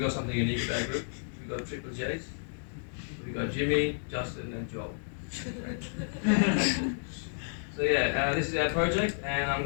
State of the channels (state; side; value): silent; right; digital silence